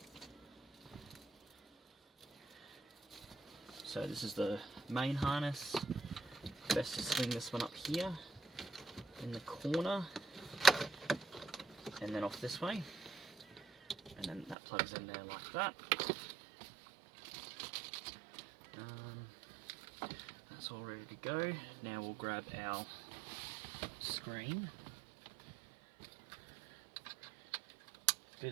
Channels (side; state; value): left; drops out; at 14.6 s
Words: So this is the main harness. Best to swing this one up here in the corner and then off this way, and then that plugs in there like that. That's all ready to go. Now we'll grab our screen, do